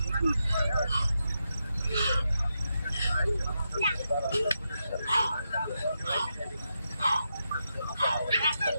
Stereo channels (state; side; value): inverted; both; correlation -0.85